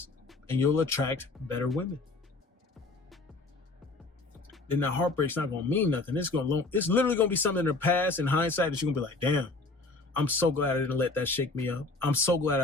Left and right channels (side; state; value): right; quieter; 3.3 dB